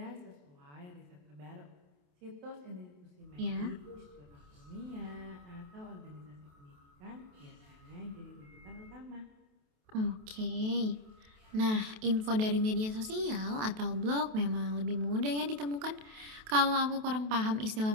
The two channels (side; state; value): left; late; 28 ms